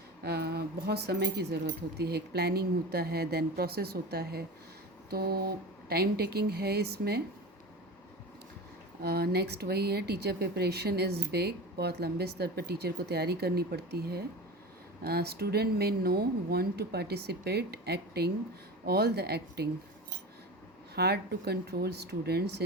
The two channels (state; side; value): normal; both; correlation 0.29